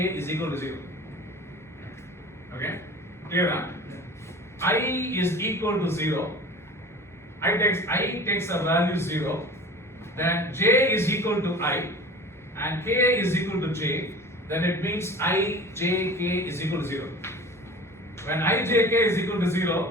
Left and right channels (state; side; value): normal; both; correlation 0.39